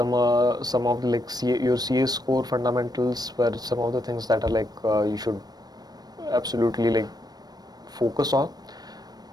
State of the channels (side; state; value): left; late; 0.19 ms